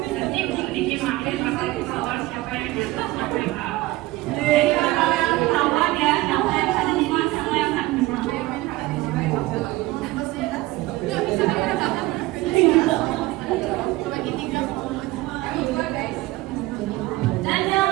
Nanti sedikit makin bakal ketahuan siapa yang jatuh siapa yang kalah. Jadi kalian ketahuan ya, siapa yang ada di mana, siapa yang tak bisa. Dan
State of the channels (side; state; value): left; quieter; 18.9 dB